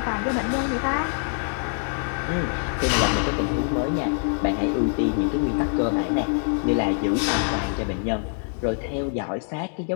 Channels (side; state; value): right; silent; 58 dB below the other